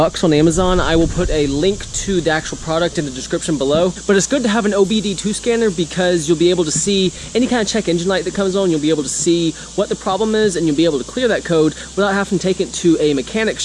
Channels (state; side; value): identical; both; correlation 1.00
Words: on Amazon. I will put a link to the actual product in the description below, but it's good to have an OBD2 scanner because you'll be able to see any kind of check engine light that comes on. You'll be able to see what the problem is, and you'll be able to clear that code without having to take it to a mechanic